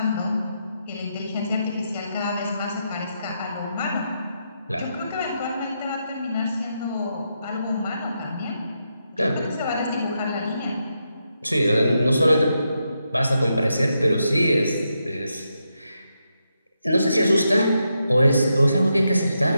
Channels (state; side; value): inverted; both; correlation -0.83